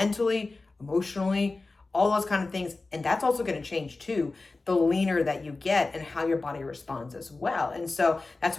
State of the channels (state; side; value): quieter; right; 3.5 dB